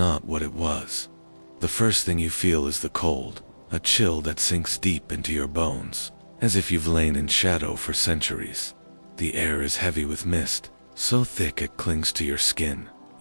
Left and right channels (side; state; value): both; inverted; correlation -1.00